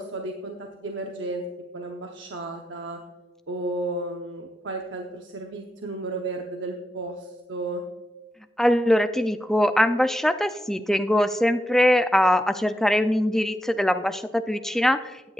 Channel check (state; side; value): normal; both; correlation 0.85